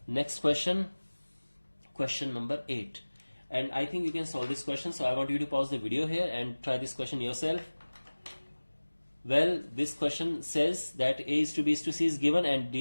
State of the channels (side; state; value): both; inverted; correlation -1.00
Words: next question, question number 8, and I think you can solve this question, so I want you to pause the video here and try this question yourself. Well, this question says that A is to B is to C is given and